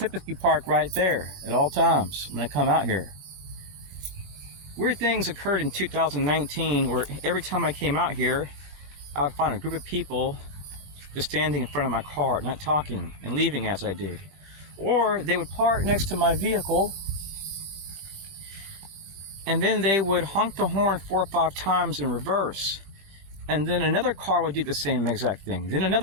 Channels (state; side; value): late; left; 20 ms